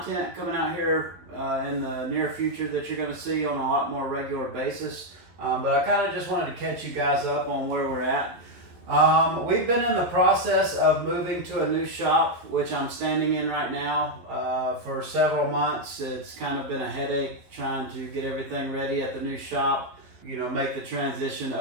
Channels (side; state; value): left; late; 11 ms